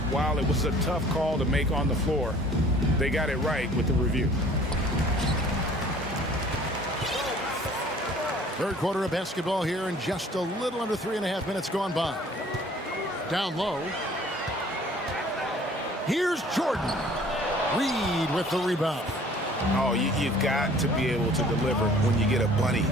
while it was a tough call to make on the floor, they got it right with the review. 3rd quarter of basketball here, and just a little under 3.5 minutes gone by. Down low. Here's Jordan. Reed with the rebound. Oh, you've got to be able to deliver when you get a bunny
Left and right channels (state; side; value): normal; both; correlation 0.52